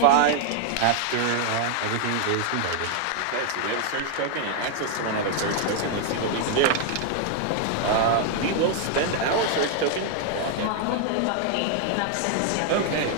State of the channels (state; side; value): different; both; correlation 0.00